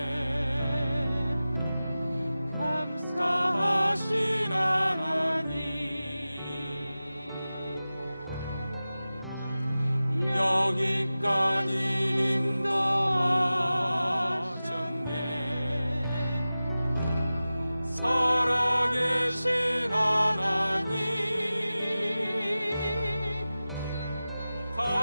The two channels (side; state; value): both; inverted; correlation -0.95